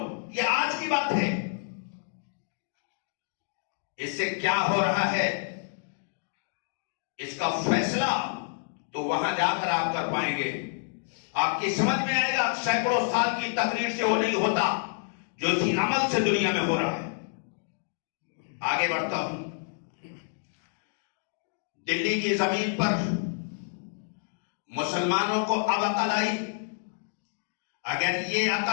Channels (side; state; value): right; silent; digital silence